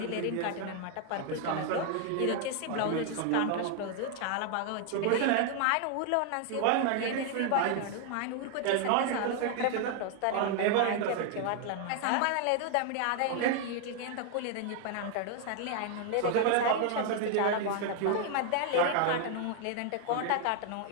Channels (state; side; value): different; both; correlation 0.00